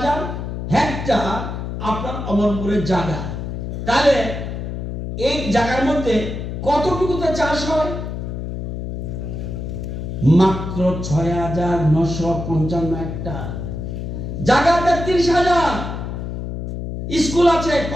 হেক্টর আপনার অমরপুরের জায়গা। তাহলে এই জায়গার মধ্যে কতটুকুতে চাষ হয়? মাত্র 6,955 হেক্টর জায়গা। 33,000 স্কুল আছে,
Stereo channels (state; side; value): noise; left; hum, 5 dB below the sound